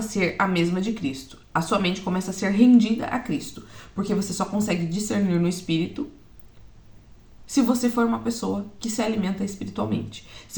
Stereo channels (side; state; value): both; identical; correlation 1.00